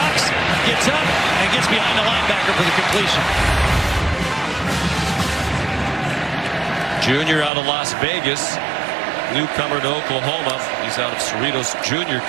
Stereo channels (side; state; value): left; drops out; at 7.5 s